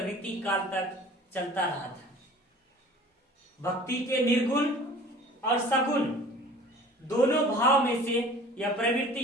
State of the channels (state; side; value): normal; both; correlation 0.46